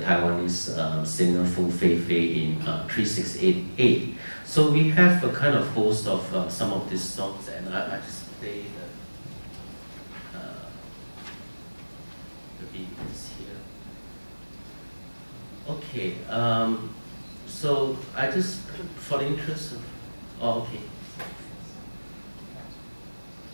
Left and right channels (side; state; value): both; inverted; correlation -1.00